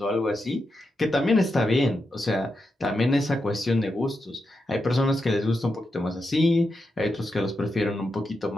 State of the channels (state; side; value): normal; both; correlation 0.87